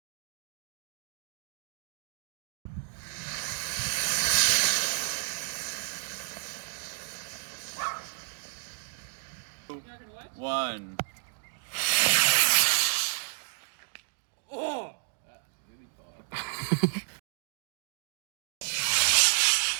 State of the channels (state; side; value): silent; left; digital silence